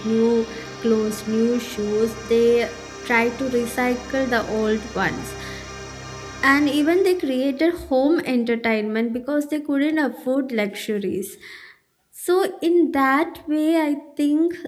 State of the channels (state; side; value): identical; both; correlation 1.00